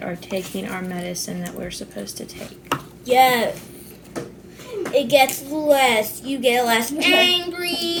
are taking our medicine that we're supposed to take. Yes. It gets less. You get less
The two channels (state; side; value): identical; both; correlation 1.00